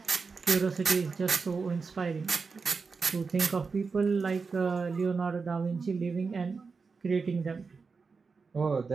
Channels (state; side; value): quieter; left; 4.8 dB